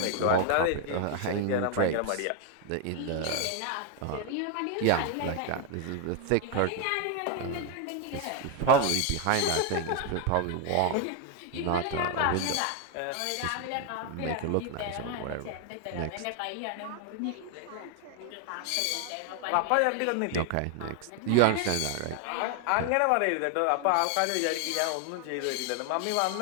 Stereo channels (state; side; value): different; both; correlation 0.01